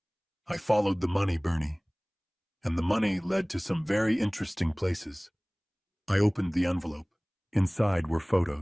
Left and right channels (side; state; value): both; identical; correlation 1.00